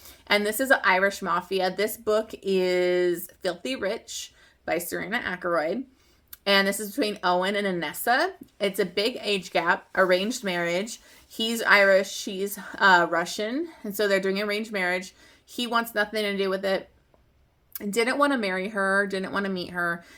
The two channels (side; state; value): both; identical; correlation 1.00